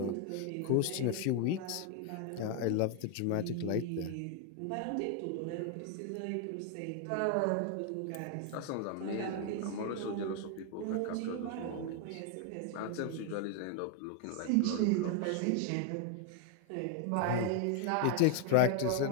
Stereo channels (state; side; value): different; both; correlation 0.00